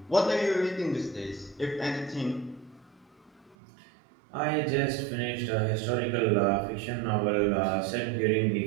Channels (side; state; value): left; drops out; at 3.6 s